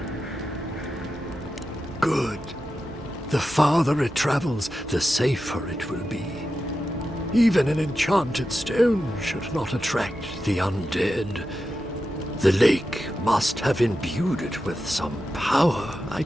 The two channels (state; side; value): normal; both; correlation 0.90